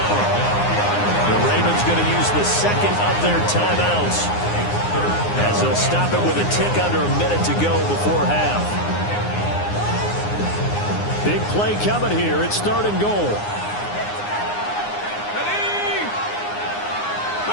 The Ravens going to use the 2nd of their timeouts as they'll stop it with a tick under a minute to go before half. Big play coming here. It's 3rd and goal.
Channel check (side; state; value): right; late; 9.7 ms